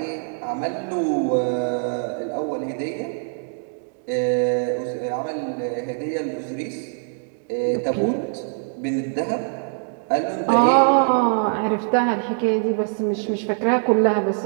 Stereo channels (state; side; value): silent; left; digital silence